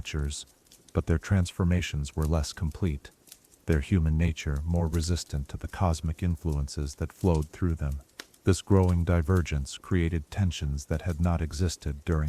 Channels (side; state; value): both; identical; correlation 1.00